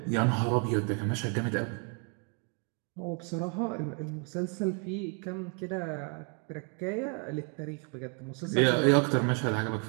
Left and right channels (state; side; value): quieter; left; 37.3 dB